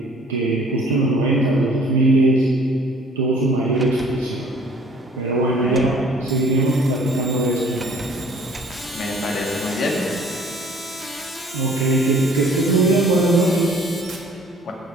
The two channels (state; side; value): normal; both; correlation 0.54